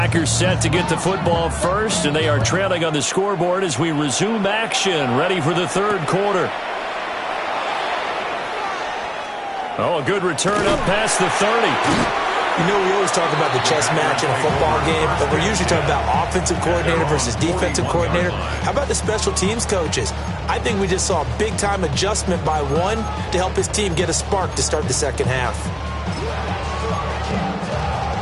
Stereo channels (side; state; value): both; identical; correlation 1.00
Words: set to get the football first, and they are trailing on the scoreboard as we resume action, ready for the third quarter. Oh, a good return up past the 30. You know, we always talk about the chess match in a football game, but we're usually talking about offensive coordinator versus defensive coordinator. How about the special teams coaches? I think we just saw a big-time adjustment by one to help his team get a spark to start the second half.